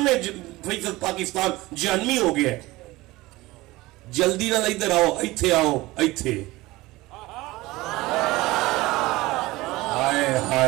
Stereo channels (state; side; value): quieter; left; 19.7 dB